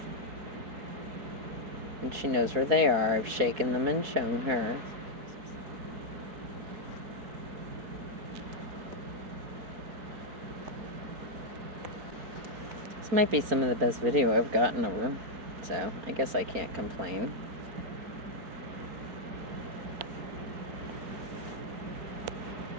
And she knows where they are. I've shaken them and shown her. This might be some of the best video I've gotten of her, so I guess I can't complain.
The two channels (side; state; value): left; late; 4.3 ms